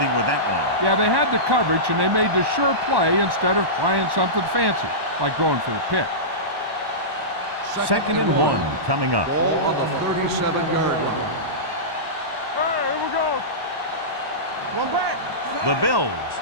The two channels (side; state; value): left; late; 1.1 ms